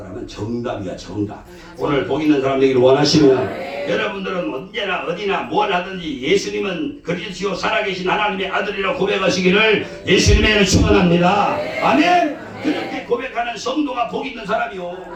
정답이야, 정답. 오늘 복 있는 사람 되기를 원하시면 여러분들은 언제나 어디나 뭘 하든지 예수님은 그리스도 살아계신 하나님의 아들이라고 고백하시기를 예수님의 이름으로 축원합니다. 아멘. 그렇게 고백하는 성도가 복 있는 사람이요.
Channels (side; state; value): both; identical; correlation 1.00